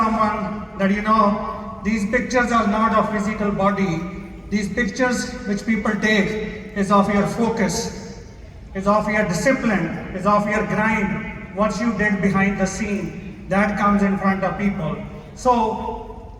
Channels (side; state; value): both; identical; correlation 1.00